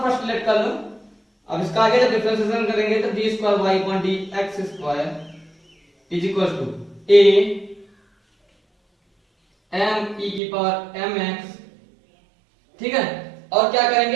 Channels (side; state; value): left; drops out; at 10.4 s